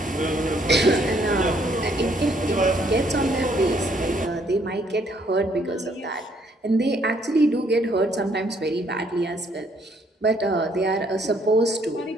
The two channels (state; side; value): normal; both; correlation 0.67